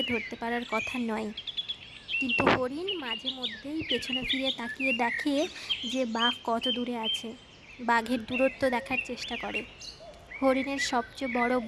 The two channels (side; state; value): both; identical; correlation 1.00